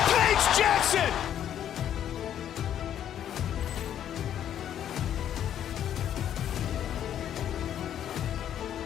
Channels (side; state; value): right; quieter; 10.3 dB